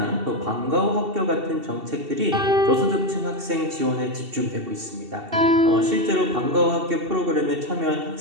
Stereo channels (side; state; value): left; late; 2.7 ms